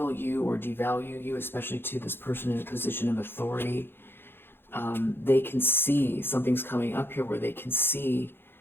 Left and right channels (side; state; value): right; late; 0.10 ms